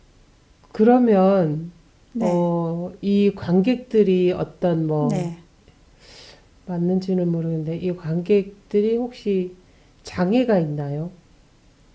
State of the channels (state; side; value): identical; both; correlation 1.00